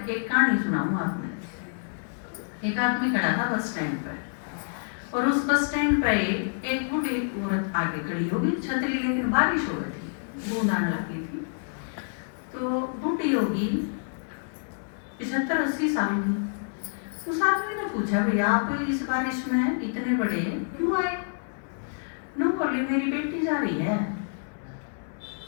कहानी सुनाऊं आपने। एक आदमी खड़ा था बस स्टैंड पर और उस बस स्टैंड पर एक बूढ़ी औरत आगे खड़ी होगी, छतरी लेकिन बारिश हो गई थी, बूंद आने लगी थी। तो बूढ़ी होगी 75-80 साल की। उस आदमी ने पूछा भैया आप इस बारिश में इतने बड़े क्यों आए? नो बोली मेरी बेटी जा रही है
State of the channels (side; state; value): right; silent; digital silence